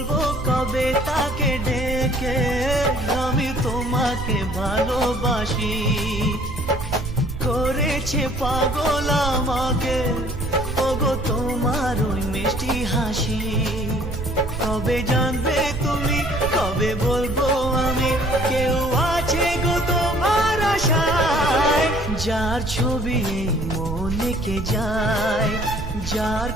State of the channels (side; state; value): right; noise; rumble, 6 dB below the sound